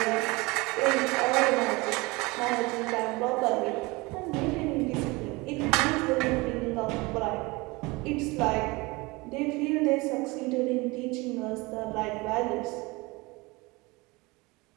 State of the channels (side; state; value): left; quieter; 24.1 dB